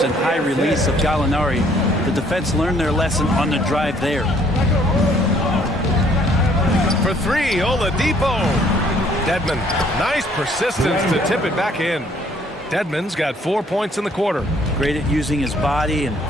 and high release of Gallinari. The defense learned their lesson on the drive there. For 3, Oladipo. Dedmon, nice persistence to tip it back in. Dedmon's got 4 points in the quarter. Great at using his body and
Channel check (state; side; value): normal; both; correlation 0.62